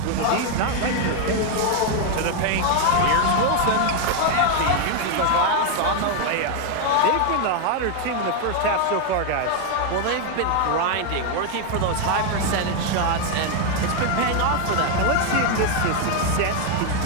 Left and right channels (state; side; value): different; both; correlation 0.01